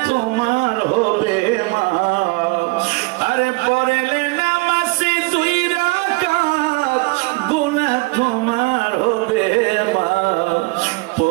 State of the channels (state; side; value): quieter; left; 25.9 dB